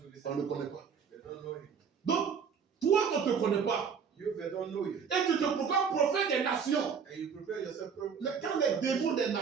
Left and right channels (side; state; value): left; quieter; 6.5 dB